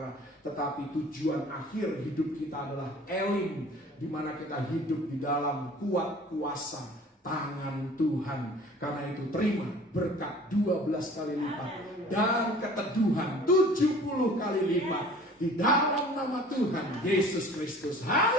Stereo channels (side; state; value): both; normal; correlation 0.47